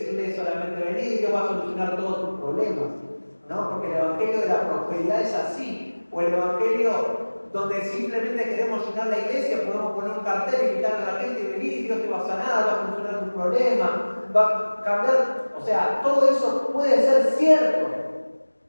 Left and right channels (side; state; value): both; inverted; correlation -1.00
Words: solamente venir y Dios va a solucionar todos tus problemas, ¿no? Porque el Evangelio de la prosperidad es así, o el Evangelio donde simplemente queremos llenar la iglesia, podemos poner un cartel y invitar a la gente y venir y Dios te va a sanar, va a solucionar tus problemas, va a cambiar, o sea, todo eso puede ser cierto,